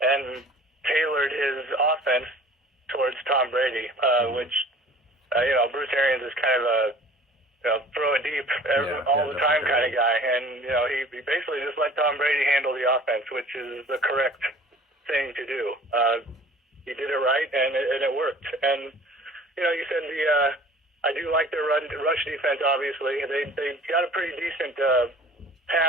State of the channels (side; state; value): both; normal; correlation 0.48